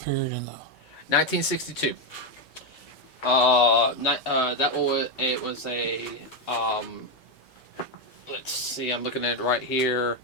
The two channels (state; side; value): normal; both; correlation 0.06